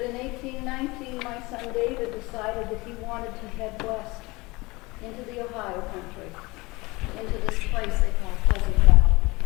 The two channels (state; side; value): quieter; right; 23.2 dB